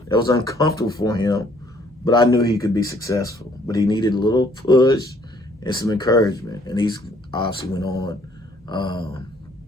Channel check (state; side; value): normal; both; correlation 0.63